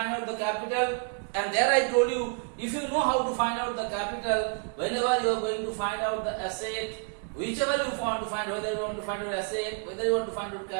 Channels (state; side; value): quieter; left; 37.9 dB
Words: out the capital. And there I told you, if you know how to find out the capital, whenever you are going to find out the asset, whichever you want to find, whether you want to find out asset, whether you want to find out